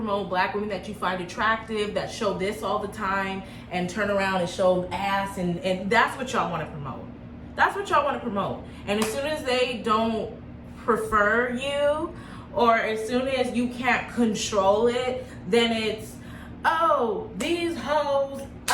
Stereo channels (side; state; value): both; identical; correlation 1.00